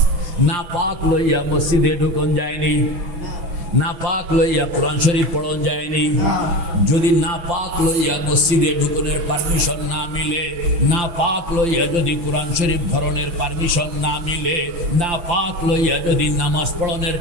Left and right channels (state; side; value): late; left; 5.8 ms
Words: নাপাক লইয়া মসজিদে ঢুকন যায়নি, নাপাক লইয়া কোরআন শরীফ পড়ন যায়নি। যদি নাপাক লইয়া মসজিদে ঢুকনের পারমিশন না মিলে, নাপাক লইয়া যদি কোরআন শরীফ ধরনের পারমিশন না মিলে, নাপাক লইয়া যদি নামাজ পড়নের